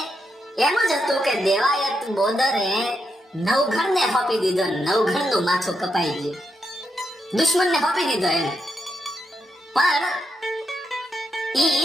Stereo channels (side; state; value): both; normal; correlation 0.82